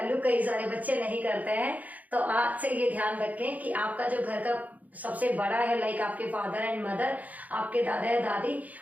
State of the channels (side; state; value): left; late; 0.077 ms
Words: कई सारे बच्चे नहीं करते हैं। तो आज से ये ध्यान रखें कि आपका जो घर का सबसे बड़ा है, लाइक आपके फादर एंड मदर, आपके दादा या दादी,